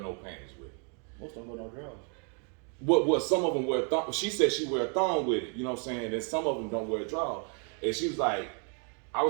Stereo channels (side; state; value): left; quieter; 39.5 dB